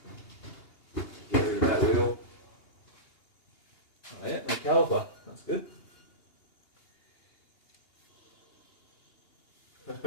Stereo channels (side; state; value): right; late; 2.8 ms